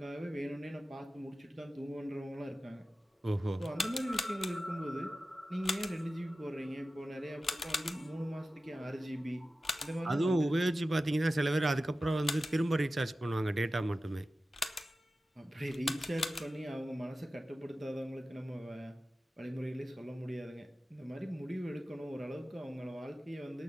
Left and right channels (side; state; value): both; normal; correlation 0.95